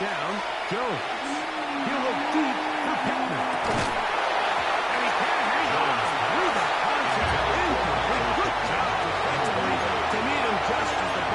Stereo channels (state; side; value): identical; both; correlation 1.00